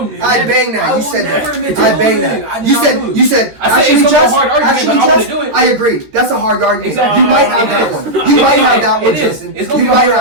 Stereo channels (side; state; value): left; late; 13 ms